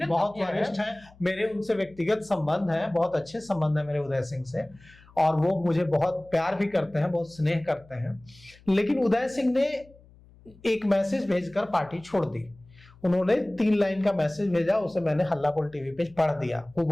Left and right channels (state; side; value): noise; left; hum, 26 dB below the sound